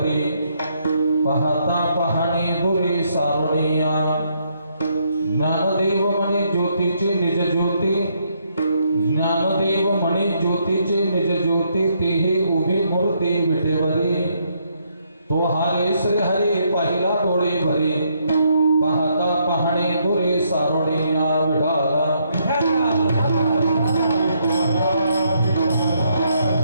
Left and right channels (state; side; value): inverted; both; correlation -0.74